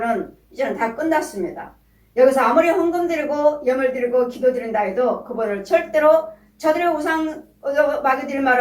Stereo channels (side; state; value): both; identical; correlation 1.00